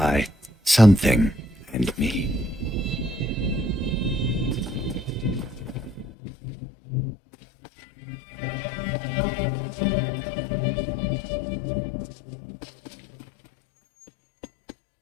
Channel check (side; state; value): right; drops out; at 6.1 s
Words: something and me.